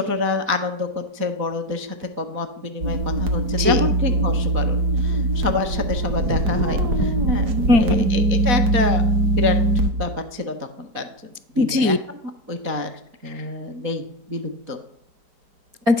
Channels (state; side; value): late; left; 4.3 ms